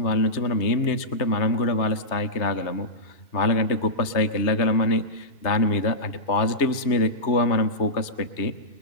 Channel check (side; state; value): right; late; 3.2 ms